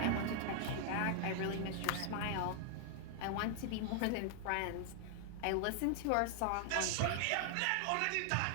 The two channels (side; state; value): both; different; correlation 0.00